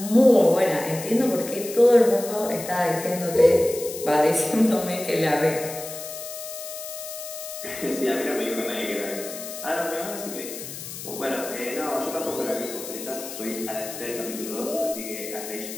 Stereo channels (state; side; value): noise; left; hiss, 10 dB below the sound